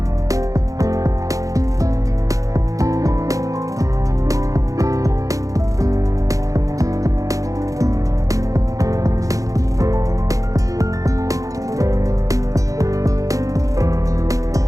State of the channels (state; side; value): late; left; 0.16 ms